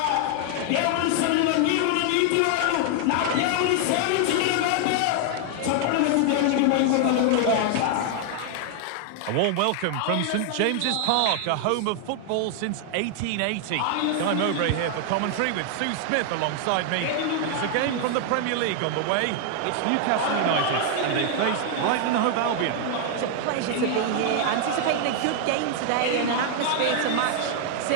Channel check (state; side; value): different; both; correlation 0.00